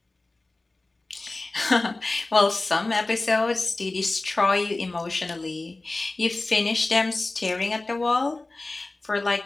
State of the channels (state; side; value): quieter; right; 3.1 dB